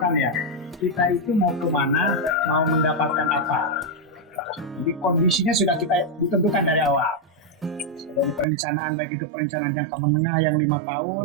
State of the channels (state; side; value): drops out; left; at 8.5 s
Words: ya. Kita itu mau kemana, mau mendapatkan apa. Jadi kondisinya sudah kita ditentukan dari awal. Dari perencanaan, baik itu perencanaan jangka menengah yang 5 tahun